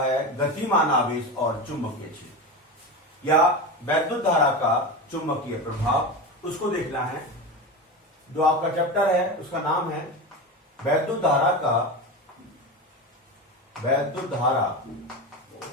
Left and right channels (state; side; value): normal; both; correlation 0.22